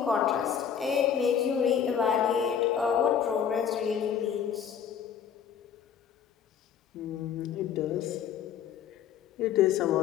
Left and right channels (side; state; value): right; quieter; 8.2 dB